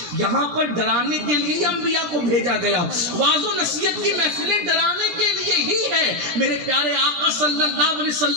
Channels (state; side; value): late; left; 17 ms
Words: یہاں پر ڈرانے کے لیے انبیاء کو بھیجا گیا. واعظ و نصیحت کی محفلیں ڈرانے کے لیے ہی ہے. میرے پیارے آقا صلی اللہ علیہ